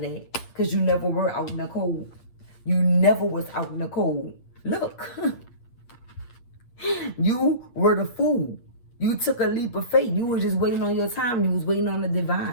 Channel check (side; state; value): right; late; 8.5 ms